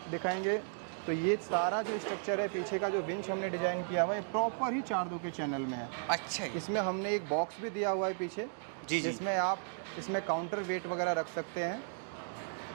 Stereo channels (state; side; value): silent; left; digital silence